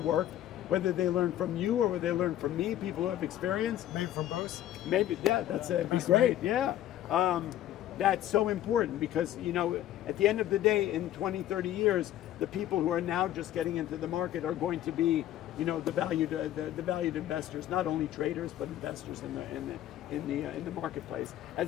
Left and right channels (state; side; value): quieter; right; 12.5 dB